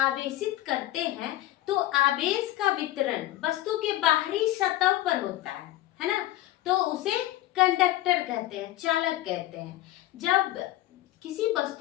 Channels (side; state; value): right; quieter; 15.4 dB